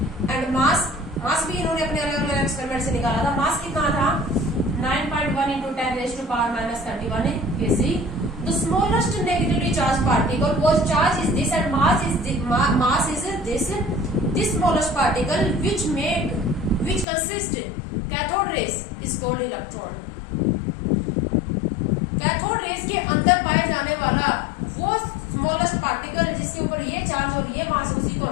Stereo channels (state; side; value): drops out; right; at 17.1 s